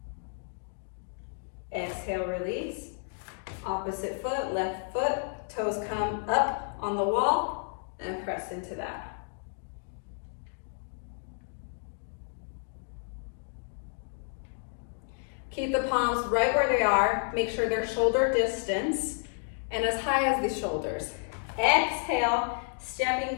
Exhale, release. Opposite foot, left foot, toes come up on the wall and press into that. Keep the palms right where they are. Make sure they're shoulder distance and as high as the shoulders. Exhale, stepping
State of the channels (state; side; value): silent; right; 57 dB below the other